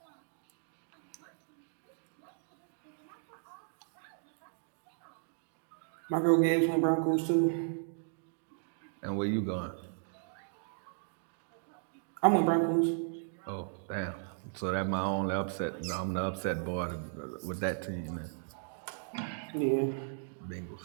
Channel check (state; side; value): silent; left; digital silence